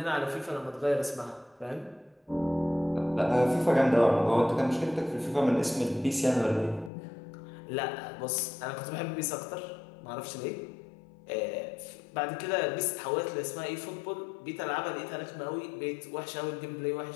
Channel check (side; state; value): right; drops out; at 6.9 s